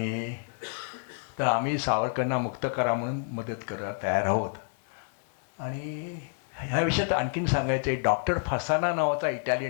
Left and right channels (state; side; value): silent; right; digital silence